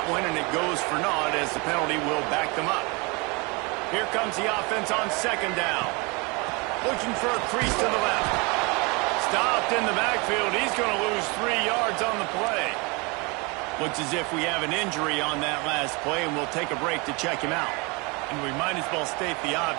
one, and it goes for naught as the penalty will back them up. Here comes the offense on 2nd down. Looking for a crease to the left. Stopped in the backfield. He's going to lose 3 yards on the play. Looks as if we have an injury on that last play, and we'll take a break to check him out. And we might as well state the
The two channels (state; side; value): quieter; left; 28.5 dB